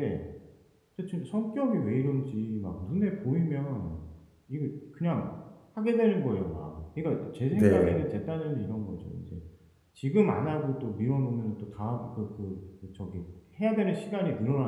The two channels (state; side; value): identical; both; correlation 1.00